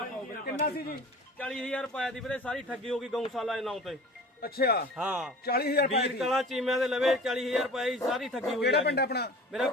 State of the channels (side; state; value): both; normal; correlation 0.40